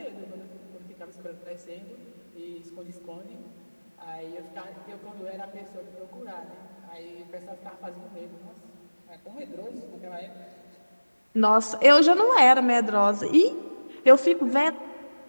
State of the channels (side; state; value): both; inverted; correlation -1.00